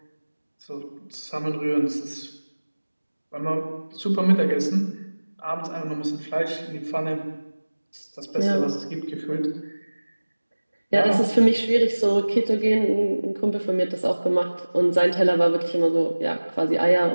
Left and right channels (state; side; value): inverted; both; correlation -1.00